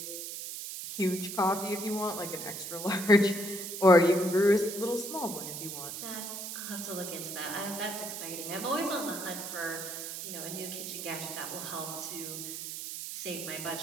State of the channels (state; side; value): noise; right; hiss, 7 dB below the sound